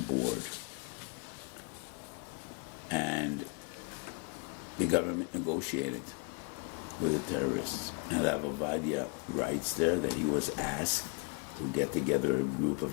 And the government negotiated with the terrorists. And Rav Ovadia writes there that he was asked to get together a group of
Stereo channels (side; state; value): right; quieter; 35.0 dB